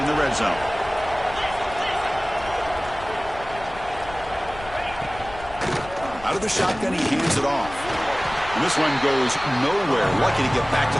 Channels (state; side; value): noise; left; rumble, 16 dB below the sound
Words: the red zone. Out of the shotgun, he hands it off. And this one goes nowhere. Lucky to get back to